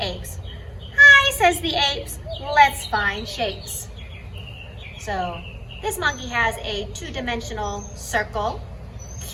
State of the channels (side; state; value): both; identical; correlation 1.00